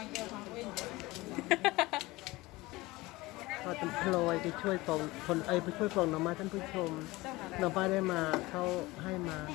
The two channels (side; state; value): right; quieter; 20.6 dB